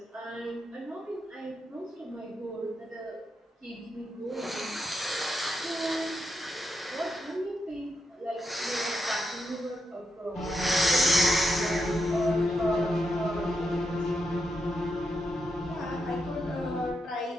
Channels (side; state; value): both; normal; correlation 0.84